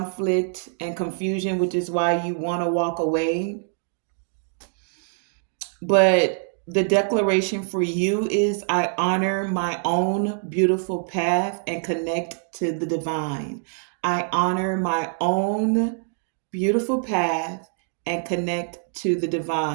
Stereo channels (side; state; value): left; silent; digital silence